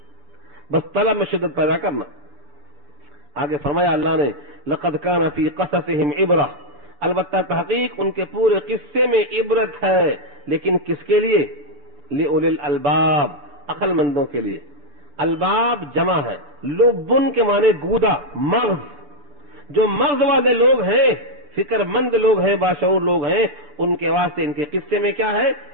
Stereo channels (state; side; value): late; left; 6.8 ms